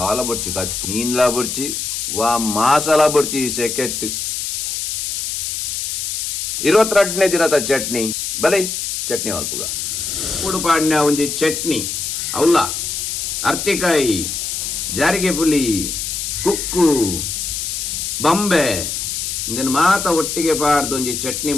ಬರ್ಚಿ ಕಾಚು ನೀನ್ಲಾ ಬರ್ಚಿ ವಾ ಮಾಸಾಲ ಬರ್ಚಿ ಸೆಕೆಟ್ 22ನೇ ದಿನದ ಚಟ್ನಿ ಬಲೈ ಚಟ್ನಿ ಅಲ್ಪುಗ ಉಡುಪಾಡ್ನ ಒಂಜಿ ಚಟ್ನಿ ಅವಲ್ಲ ಅರ್ತಿಕಾಯಿ ಜಾರಿಗೆ ಪುಲಿ ಕುಕ್ಕು ಬಂಬೆ ಇಂದನ್ ಮಾತ ಒಟ್ಟಿಗೆ ಪಾಡ್ದು ಒಂಜಿ ಚಟ್ನಿ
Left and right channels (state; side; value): noise; left; hiss, 3 dB below the sound